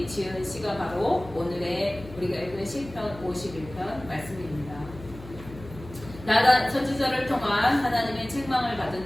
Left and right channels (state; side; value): noise; left; hum, 16 dB below the sound